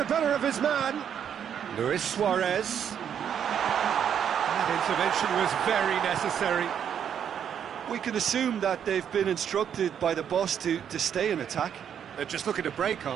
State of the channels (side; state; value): left; quieter; 8.6 dB